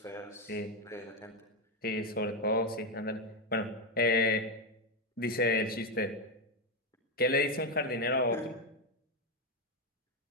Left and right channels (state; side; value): normal; both; correlation 0.08